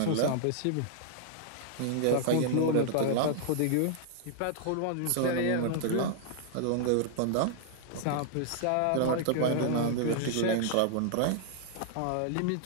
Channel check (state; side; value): different; both; correlation -0.01